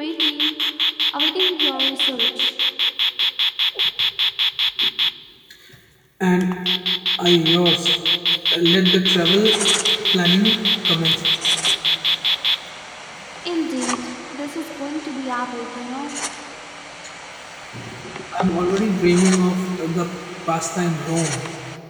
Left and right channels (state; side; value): identical; both; correlation 1.00